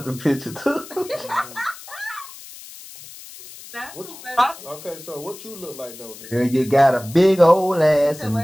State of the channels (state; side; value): noise; left; hiss, 16 dB below the sound